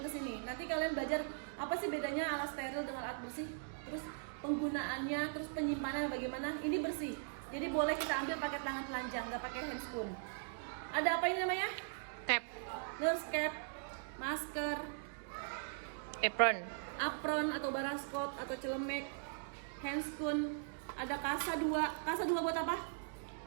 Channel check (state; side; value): silent; left; digital silence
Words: ke sini. Nanti kalian belajar apa sih bedanya alat steril dengan alat bersih. Terus penggunaannya, terus penyimpanan bagaimana. Ini bersih. Jadi boleh kita ambil pakai tangan telanjang, nggak pakai handscoon. Ada apa ini namanya? Cap. Nurse cap, masker, apron atau baraskop atau celemek, handscoon, ada kasa 2. Kasa 2 buat apa?